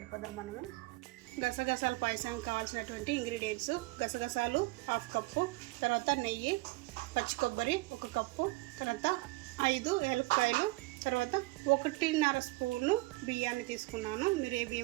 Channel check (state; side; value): quieter; left; 22.6 dB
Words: మనము. గసగసాల పాయసానికి కావాల్సినటువంటి ఇంగ్రీడియంట్స్: గసగసాలు 1/2 కప్పు, తర్వాత నెయ్యి, పచ్చి కొబ్బరి 1 కప్పు, తర్వాత 5 ఏలక్కాయలు, తర్వాత 1.5 స్పూను బియ్యాన్ని తీసుకున్నాను. మీరు ఏ